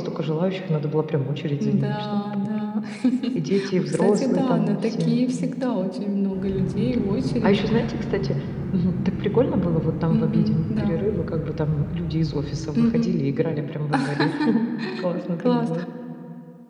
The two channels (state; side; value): identical; both; correlation 1.00